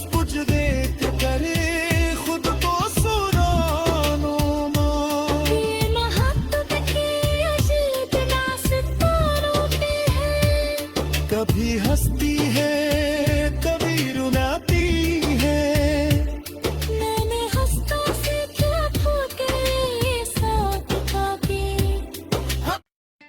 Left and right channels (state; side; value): identical; both; correlation 1.00